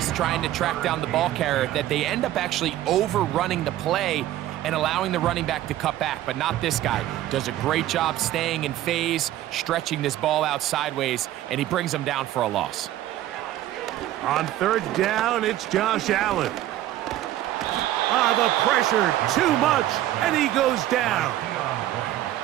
trying to track down the ball carrier that they end up actually overrunning the play and allowing the running back to cut back? But not this guy. Does a great job staying in phase, stretching this ball out sideways, and he brings him down for a loss. On 3rd down, it's Josh Allen. The pressure, too much, and he goes down.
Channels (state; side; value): quieter; left; 13.7 dB